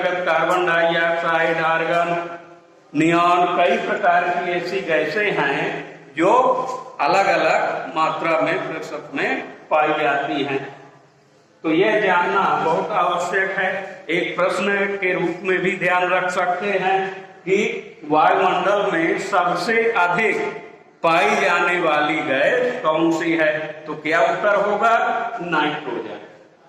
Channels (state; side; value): identical; both; correlation 1.00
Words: कार्बन डाइऑक्साइड, आर्गन, नियॉन, कई प्रकार की ऐसी गैसें हैं जो अलग अलग मात्रा में प्रतिशत में पाई जाती हैं। तो यह जानना बहुत आवश्यक है। एक प्रश्न के रूप में भी ध्यान रख सकते हैं कि वायुमंडल में सबसे अधिक पाई जाने वाली गैस कौन सी है। तो क्या उत्तर होगा? नाइट्रोजन।